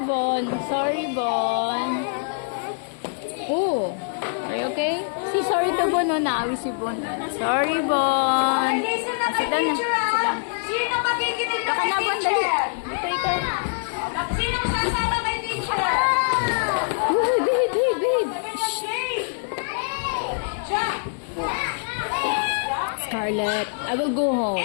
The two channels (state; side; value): silent; right; digital silence